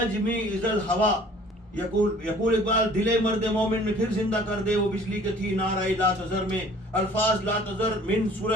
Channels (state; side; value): normal; both; correlation 0.52